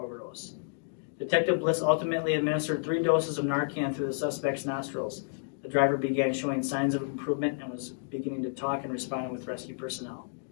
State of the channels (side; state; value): right; silent; digital silence